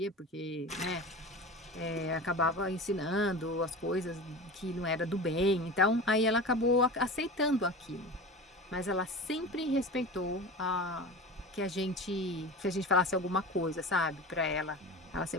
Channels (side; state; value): both; normal; correlation 0.31